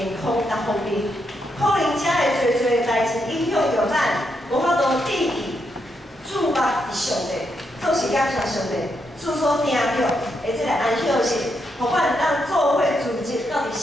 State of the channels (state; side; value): normal; both; correlation 0.81